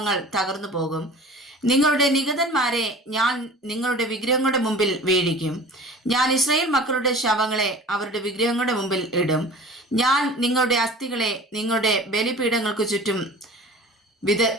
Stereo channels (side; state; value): both; normal; correlation 0.42